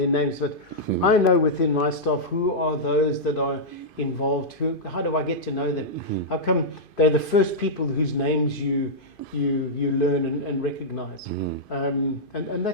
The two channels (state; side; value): late; right; 2.5 ms